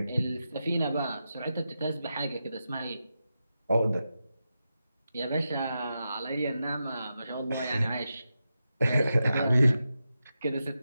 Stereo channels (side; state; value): both; inverted; correlation -0.89